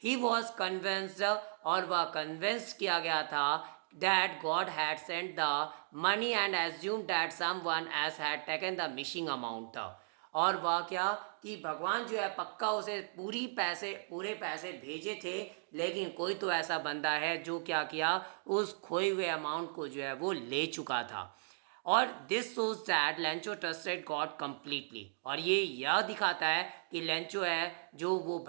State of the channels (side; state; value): left; silent; digital silence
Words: ही वॉज कन्विंस्ड, और वह कन्विंस किया गया था that God had sent the money and assumed that someone else had taken the missing amount. और वह क्या कि भगवान जो है पक्का उसे पूरे पैसे भेजे थे, लेकिन कोई तो ऐसा बंदा है जो क्या किया, उस खोए हुए अमाउंट को जो है वो ले चुका था। और this shows that Lencho trusted God completely, और ये यह दिखाता है कि लेंचो है जो वो